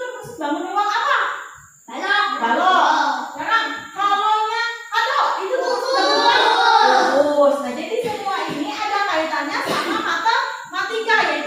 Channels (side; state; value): both; identical; correlation 1.00